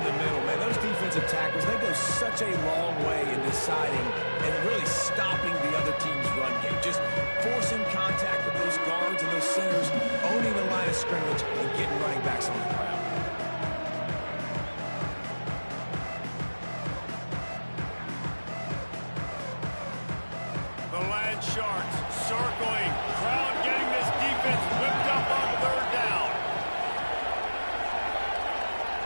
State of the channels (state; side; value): inverted; both; correlation -1.00